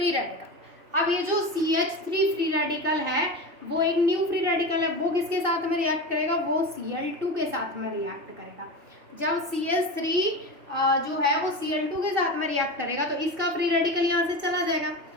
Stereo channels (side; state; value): left; late; 3.0 ms